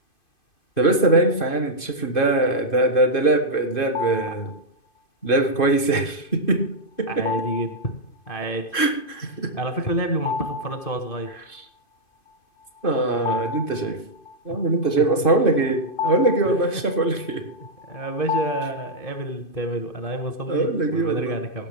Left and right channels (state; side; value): late; right; 2.5 ms